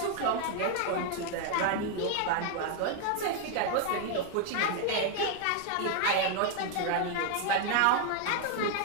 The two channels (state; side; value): different; both; correlation 0.00